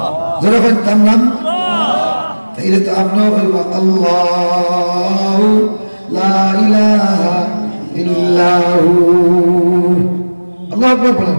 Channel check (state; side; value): inverted; both; correlation -1.00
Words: জোরে বলেন, তার নাম? তাইলে তো আপনিও বলবেন আল্লাহু লা ইলাহা ইল্লাহু। আল্লাহু আকবার বলেন।